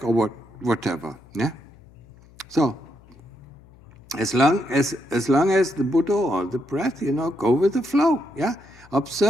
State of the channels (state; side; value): noise; left; hum, 25 dB below the sound